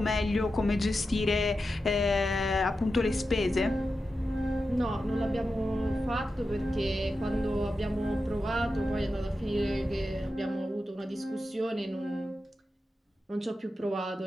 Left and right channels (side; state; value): both; normal; correlation 0.90